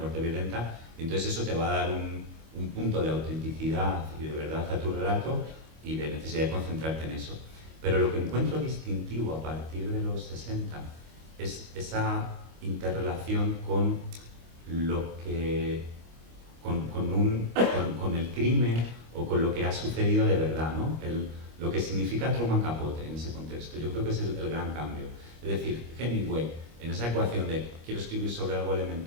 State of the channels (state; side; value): late; left; 25 ms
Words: violenta, y entonces eso te va a dar un punto de autenticidad y de verdad a tu relato y de necesidad de concentrarte en eso. Pero lo que encuentro distintivo a partir de los 60 es esa interrelación con lo que con el crimen o con lo que ha sucedido de verdad, ¿no? Lo que significa Truman Capote en ese contexto. Yo creo que es el gran cambio. Es decir, Hemingway, en esa ecuación de quiero escribir sobre algo